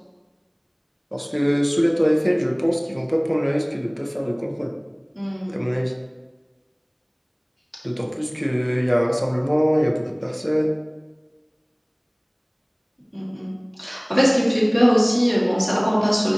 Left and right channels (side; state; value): both; identical; correlation 1.00